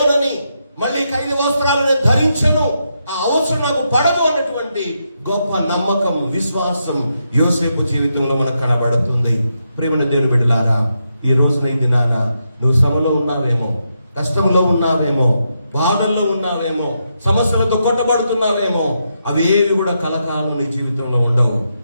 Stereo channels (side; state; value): both; inverted; correlation -0.83